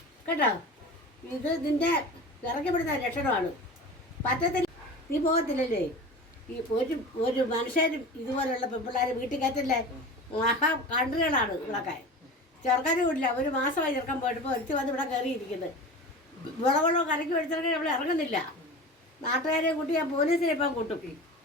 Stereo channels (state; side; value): normal; both; correlation 0.33